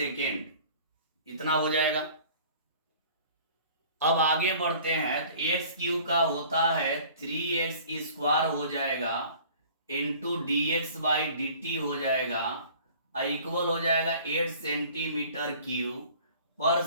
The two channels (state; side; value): inverted; both; correlation -0.49